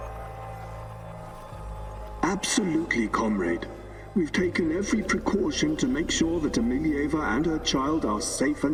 Absolutely, comrade. We've taken every precaution to make sure that Emilieva and her child are safe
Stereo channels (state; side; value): identical; both; correlation 1.00